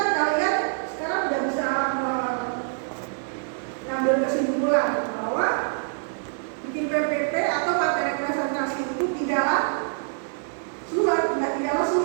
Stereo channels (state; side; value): silent; left; 61 dB below the other